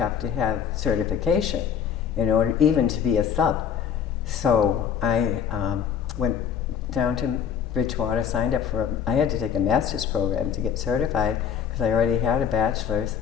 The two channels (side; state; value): right; quieter; 7.9 dB